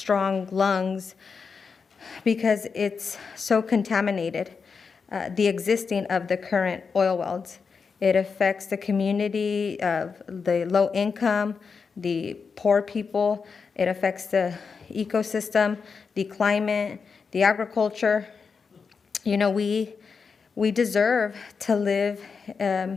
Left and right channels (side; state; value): right; quieter; 5.4 dB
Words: lungs because it's so contaminated, the existing of the current oil wells. It affects the community of the low income, the poor people. It affects the ecosystem, the climate, the agriculture. We deserve to live in